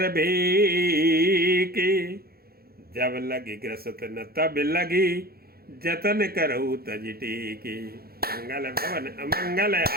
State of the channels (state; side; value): late; left; 0.44 ms